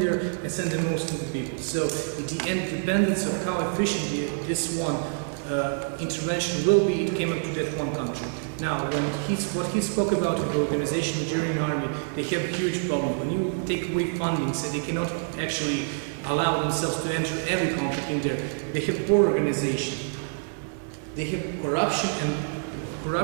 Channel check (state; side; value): silent; left; digital silence